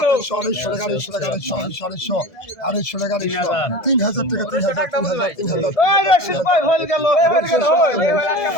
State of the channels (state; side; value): late; right; 1.7 ms